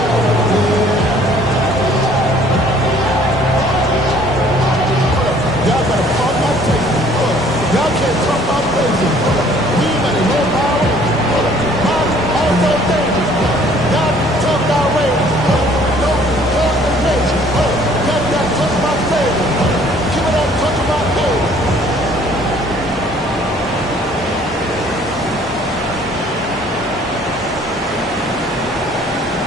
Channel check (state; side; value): normal; both; correlation 0.57